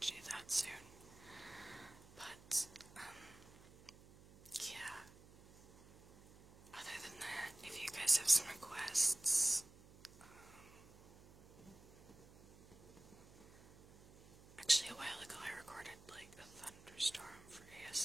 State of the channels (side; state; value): right; noise; hum, 21 dB below the sound